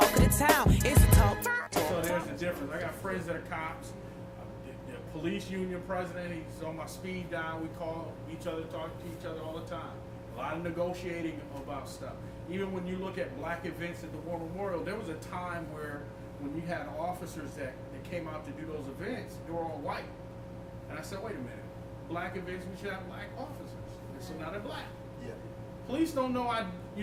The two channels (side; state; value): both; identical; correlation 1.00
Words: of the town. It's the talk. So there's the difference. I got friends that are cops. The police union president, he's on my speed dial. We call each other, talk to each other all the time. A lot of negotiating about stuff. Even when you look at black events at the War Memorial, there was a time where when you had officers that came out to do those events, they were all white. And I said, wait a minute. Black events, we should have black officers. And so now they're black. Yeah. Police don't know I,